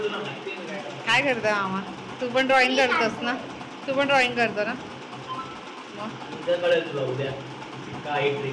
तुला माहिती आहे काय? काय करतो मामा? तू पण ड्रॉइंग करतोस ना? तू पण ड्रॉइंग करतो ना? मग उद्या कळेल तुला उद्या काय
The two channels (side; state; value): both; identical; correlation 1.00